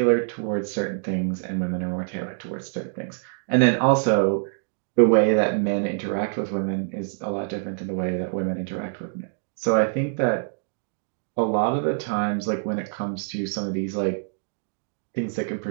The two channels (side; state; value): left; silent; digital silence